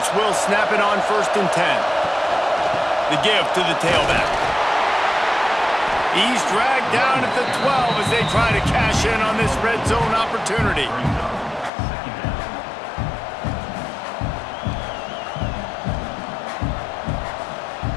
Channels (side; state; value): right; drops out; at 11.7 s